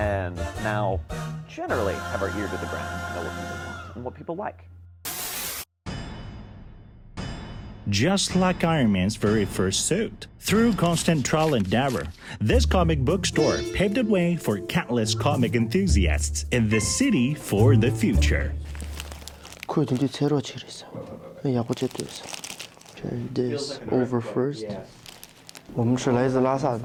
now, generally, have our ear to the ground and know what people want and what people like. Just like Iron Man's very first suit. Through constant trial and error, this comic book store paved the way for countless comic enthusiasts in the city for the future. This over first. 我们是来自拉萨的。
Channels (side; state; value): both; identical; correlation 1.00